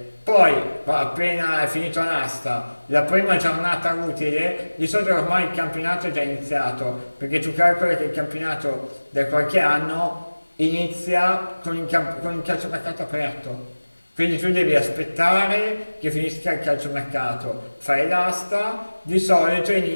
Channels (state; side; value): inverted; both; correlation -1.00